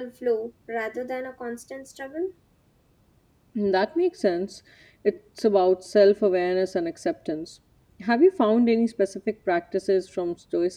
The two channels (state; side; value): identical; both; correlation 1.00